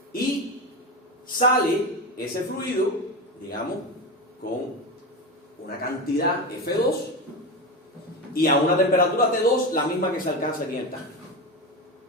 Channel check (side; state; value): both; normal; correlation 0.20